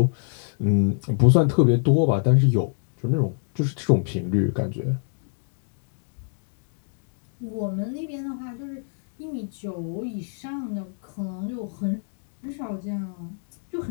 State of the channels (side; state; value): right; silent; digital silence